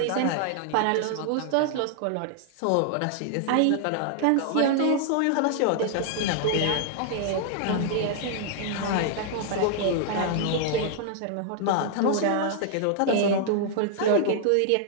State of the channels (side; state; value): both; different; correlation 0.00